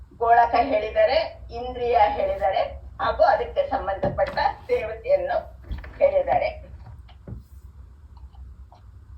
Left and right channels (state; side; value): identical; both; correlation 1.00